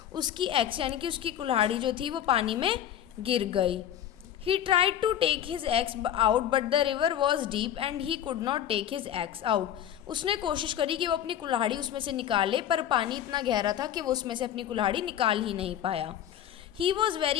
उसकी एक्स यानी कि उसकी कुल्हाड़ी जो थी वो पानी में गिर गई। He tried to take his axe out but the river was deep and he could not take his axe out. उसने कोशिश करी कि वो अपनी कुल्हाड़ी उसमें से निकाले, पर पानी इतना गहरा था कि वो उसमें से अपनी कुल्हाड़ी निकाल ही नहीं पाया। He was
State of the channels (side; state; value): right; quieter; 10.5 dB